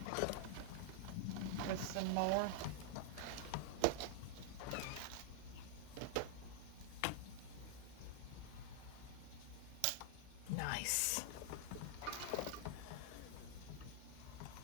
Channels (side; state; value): both; different; correlation -0.01